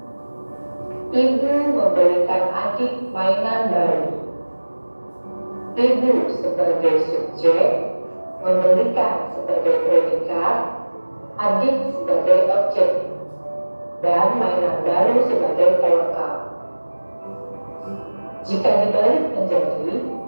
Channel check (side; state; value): both; inverted; correlation -1.00